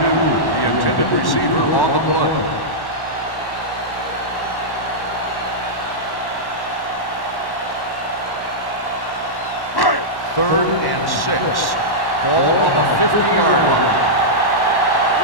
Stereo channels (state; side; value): late; right; 1.1 ms